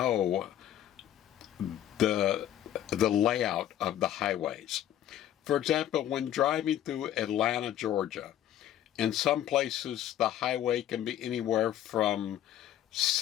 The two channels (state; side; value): quieter; right; 11.6 dB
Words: the layout of the highways. For example, when driving through Atlanta, Georgia, in some places the highway can be anywhere from